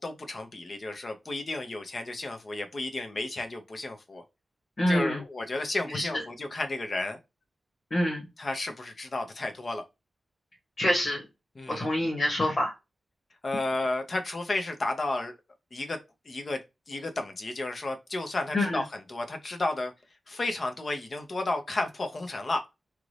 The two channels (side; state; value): both; normal; correlation 0.93